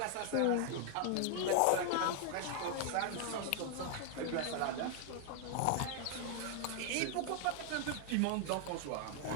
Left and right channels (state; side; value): different; both; correlation 0.00